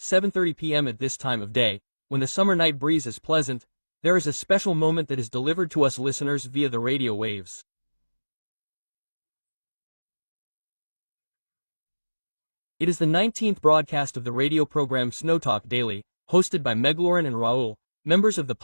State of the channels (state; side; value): inverted; both; correlation -1.00